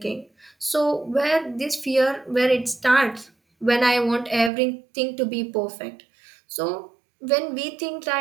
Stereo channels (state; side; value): drops out; left; at 4.5 s